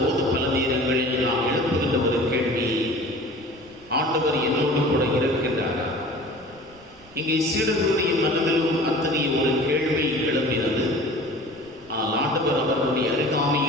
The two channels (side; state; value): right; noise; rumble, 27 dB below the sound